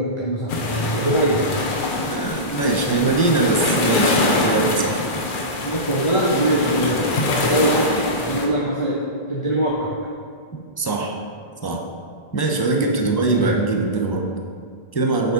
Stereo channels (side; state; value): right; late; 2.4 ms